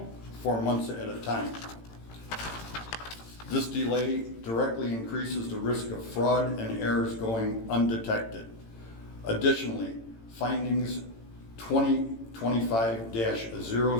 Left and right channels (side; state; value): right; late; 18 ms